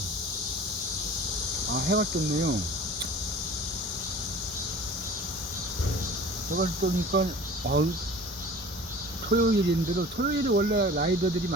해왔겠네요. 해갈 거니까, 토요일인데도, 토요일에 원래 라이더들이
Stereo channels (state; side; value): normal; both; correlation 0.43